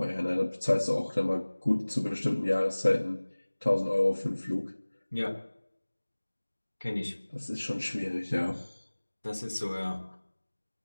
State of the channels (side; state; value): both; inverted; correlation -1.00